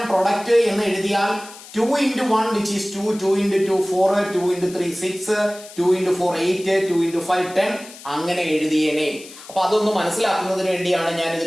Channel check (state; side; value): noise; left; hiss, 18 dB below the sound